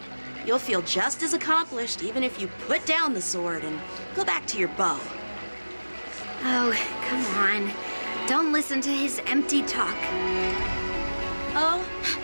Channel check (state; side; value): inverted; both; correlation -1.00